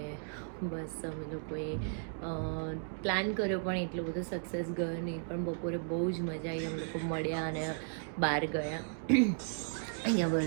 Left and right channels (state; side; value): silent; left; digital silence